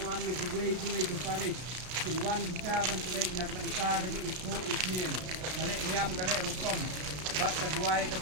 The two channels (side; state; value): left; late; 33 ms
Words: Silwan kita bantai nak bangsa ke isu isnin kale niam kale rukom bat kedua ke